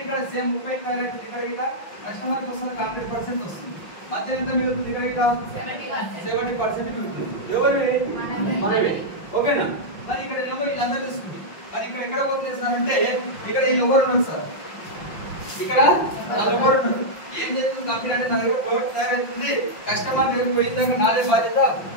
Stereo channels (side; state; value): right; late; 5.8 ms